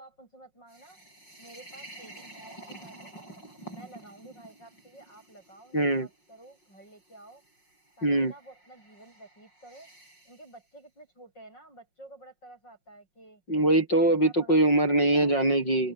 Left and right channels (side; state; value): right; late; 5.5 ms